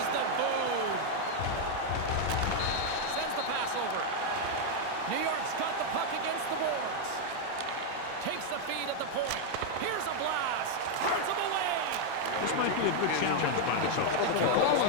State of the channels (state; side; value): different; both; correlation 0.00